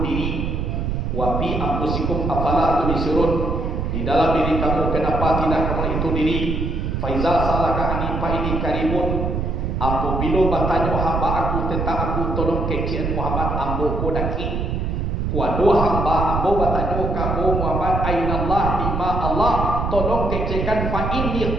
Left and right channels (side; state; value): right; noise; rumble, 1 dB below the sound